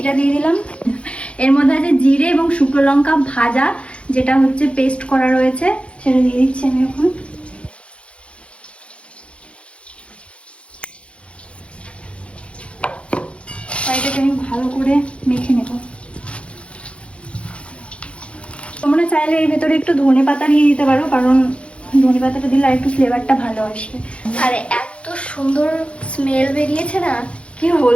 দিয়ে দিলাম, এর মধ্যে আছে জিরে এবং শুকনো লঙ্কা ভাজা, যেটা হচ্ছে পেস্ট করা রয়েছে, সেটা দিয়ে দিচ্ছি আমি এখন। এটাকে আমি ভালো করে মেখে নেব। তোমরা চাইলে এর ভেতরে একটু ধনে পাতা দিয়ে দিতে পারো, কারণ ধনে পাতাটা দিলে আর একটু ফ্লেভারটা ভালো আসবে। আর এত সুন্দর স্মেল বেরিয়েছে না, কি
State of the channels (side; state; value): right; late; 0.060 ms